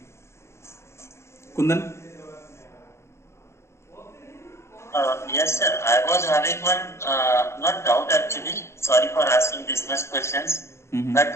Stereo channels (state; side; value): late; right; 0.13 ms